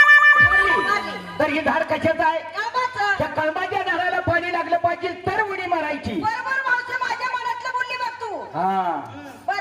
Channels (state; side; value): identical; both; correlation 1.00